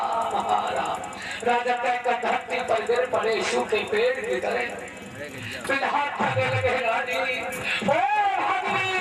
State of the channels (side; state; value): both; identical; correlation 1.00